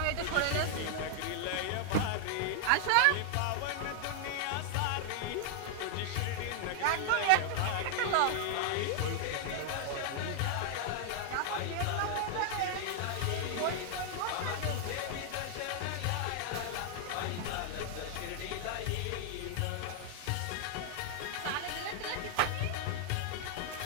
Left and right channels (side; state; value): both; different; correlation 0.00